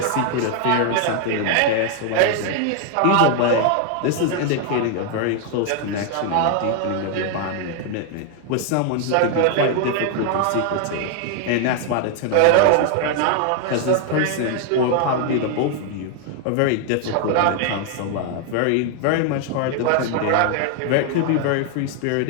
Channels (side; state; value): both; different; correlation 0.00